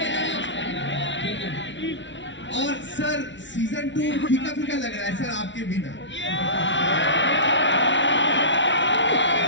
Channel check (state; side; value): late; right; 0.54 ms